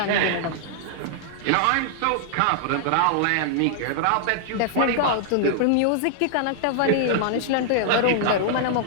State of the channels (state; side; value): different; both; correlation -0.01